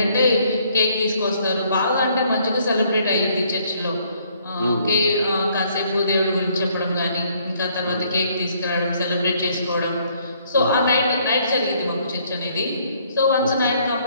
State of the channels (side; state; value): both; inverted; correlation -0.65